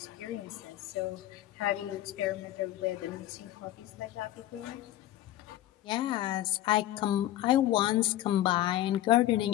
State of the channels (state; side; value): quieter; right; 14.0 dB